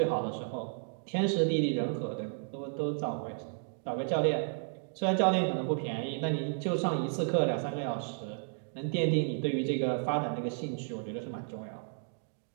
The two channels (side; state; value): left; silent; digital silence